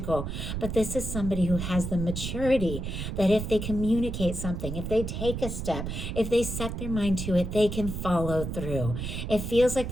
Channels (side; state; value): right; noise; rumble, 5 dB below the sound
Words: But this is somebody who has the maturity that if they communicate something, if they take a step, if they set their mind to it, they can follow through. It feels like